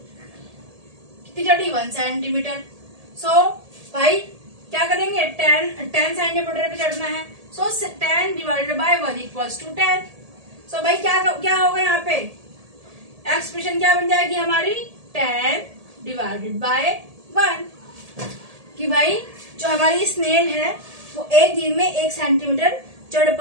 कितनी चढ़ी, 1 सेंटीमीटर। सो भाई क्या करेंगे, 10 सेंटीमीटर पे चढ़ना है। सो 10 डिवाइडेड बाय 1 इक्वल्स टू 10। सो भाई क्या होगा यहाँ पे, एक्सप्रेशन क्या बन जाएगी हमारी, 10 डिवाइडेड बाय 1। कि भाई जो हमारी स्नेल है वो एक दिन में 1 सेंटीमीटर चढ़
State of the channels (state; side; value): late; left; 1.7 ms